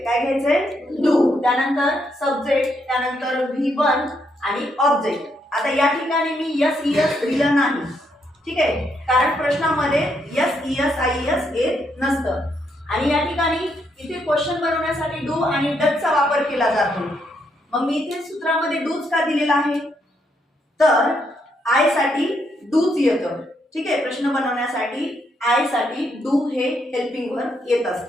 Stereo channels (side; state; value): both; normal; correlation 0.76